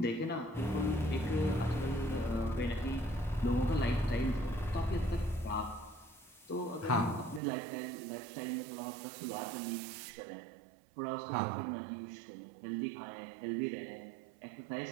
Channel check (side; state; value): left; drops out; at 7.4 s